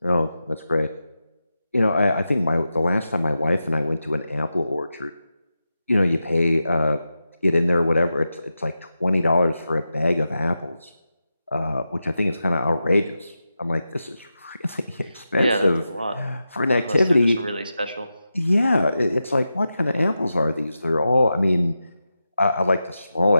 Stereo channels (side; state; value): both; inverted; correlation -0.91